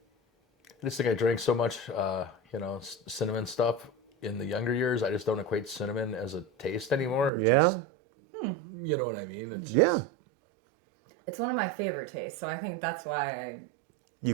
I just think I drank so much, cinnamon stuff in the younger years. I just don't equate cinnamon as a taste anymore. You know what I mean? It's just... It's one of my favorite tastes, so I think that's why You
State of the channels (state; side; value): drops out; left; at 7.3 s